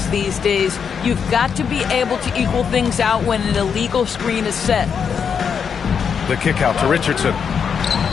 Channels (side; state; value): right; quieter; 6.8 dB